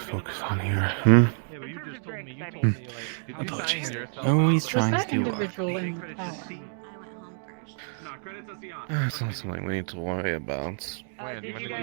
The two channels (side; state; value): left; silent; 56 dB below the other